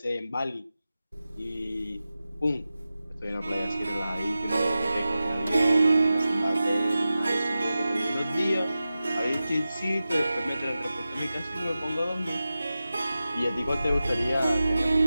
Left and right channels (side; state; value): both; inverted; correlation -0.94